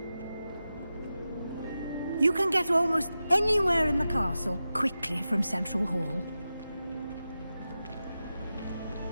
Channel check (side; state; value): both; inverted; correlation -0.92